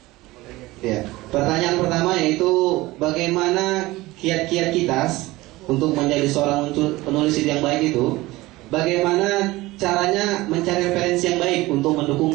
Ya. Pertanyaan pertama yaitu bagaimana kiat-kiat kita untuk menjadi seorang penulis yang baik itu? Bagaimana caranya mencari referensi yang baik untuk mendukung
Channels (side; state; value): left; quieter; 19.5 dB